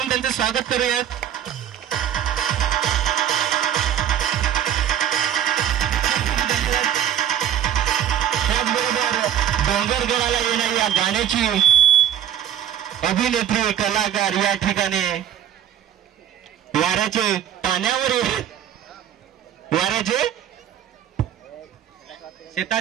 त्यांचे स्वागत करूयात। त्याचबरोबर डोंगरगडाला येणारी या गाण्याची अभिनेत्री कलाकार या ठिकाणी वाऱ्याचे पाण्यावर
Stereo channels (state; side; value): quieter; left; 10.2 dB